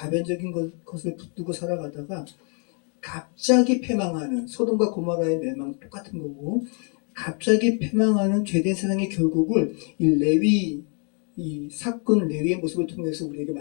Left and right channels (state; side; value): quieter; right; 39.7 dB